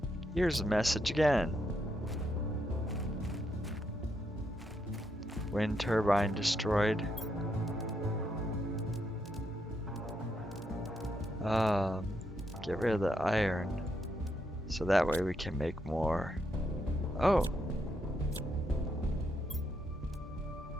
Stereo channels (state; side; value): normal; both; correlation 0.79